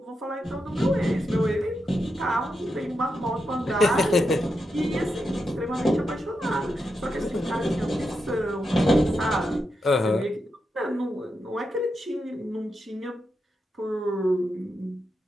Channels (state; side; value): normal; both; correlation 0.86